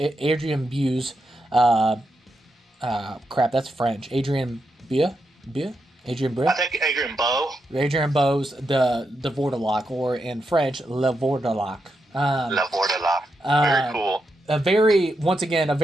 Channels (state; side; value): normal; both; correlation 0.84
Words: Buse. Crap, that's French. Adrian Bue. Adrian Bue? I think Adrian Bowe. Adrian Bowe's the Vordelok, or in French, Le Vordelok. Le Vordelok. Very cool. A